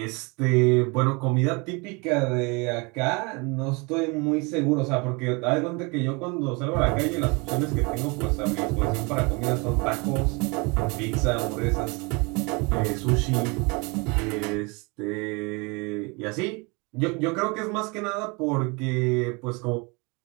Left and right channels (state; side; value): quieter; left; 29.0 dB